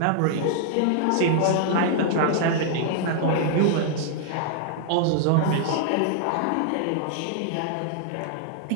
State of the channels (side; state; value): both; different; correlation -0.01